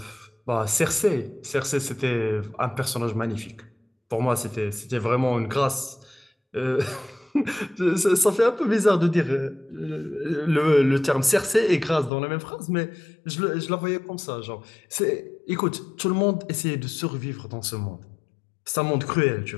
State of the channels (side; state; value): right; drops out; at 12.1 s